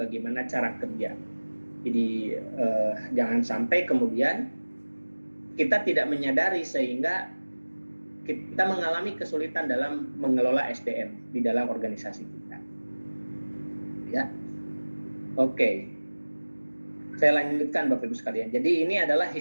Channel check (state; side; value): inverted; both; correlation -1.00